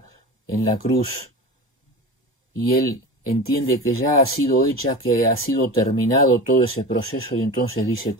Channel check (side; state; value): both; normal; correlation 0.30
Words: en la cruz, y él entiende que ya ha sido hecha, que ha sido terminado todo ese proceso, y entonces dice: